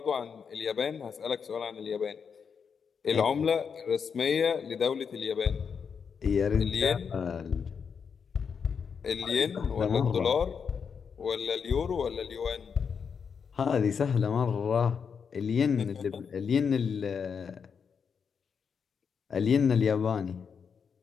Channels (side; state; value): right; quieter; 6.4 dB